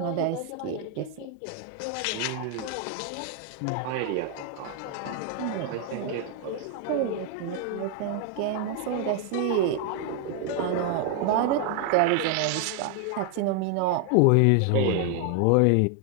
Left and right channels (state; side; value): different; both; correlation 0.00